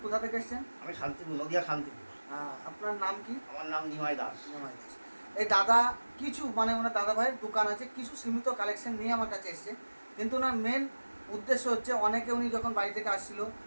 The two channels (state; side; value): inverted; both; correlation -1.00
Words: কোথা থেকে এসছেন? আমি শান্তিপুর, নদিয়া শান্তিপুর। আপনার নাম কি? আমার নাম নিমাই দাস। নিমাই দাস। এই দাদা কিছু ওনার দাদাভাইয়ের দোকান আছে, কিছু সীমিত কালেকশন নিয়ে আমার কাছে এসছে। কিন্তু ওনার মেন উদ্দেশ্য হচ্ছে, অনেকে উনি যখন বাড়ি থেকে আসছিল,